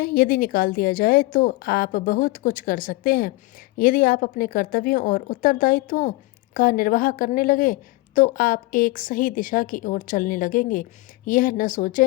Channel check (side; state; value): right; quieter; 20.6 dB